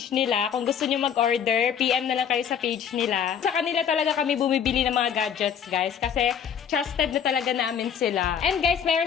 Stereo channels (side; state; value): right; quieter; 8.0 dB